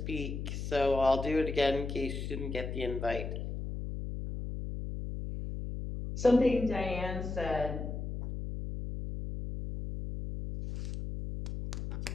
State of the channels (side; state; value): left; noise; hum, 5 dB below the sound